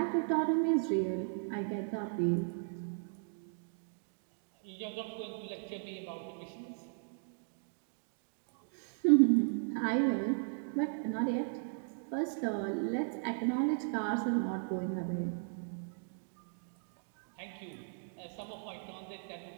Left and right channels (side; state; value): left; silent; digital silence